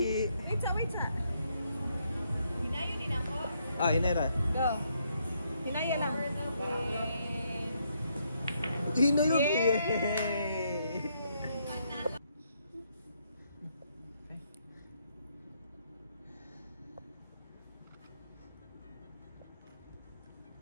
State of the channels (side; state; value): both; inverted; correlation -0.75